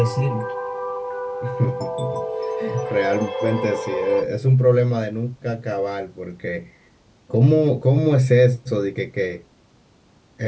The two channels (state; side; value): identical; both; correlation 1.00